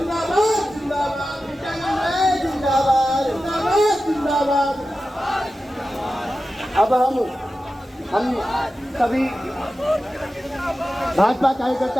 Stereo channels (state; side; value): normal; both; correlation 0.93